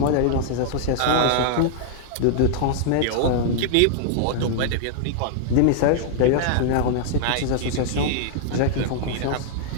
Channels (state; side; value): different; both; correlation -0.01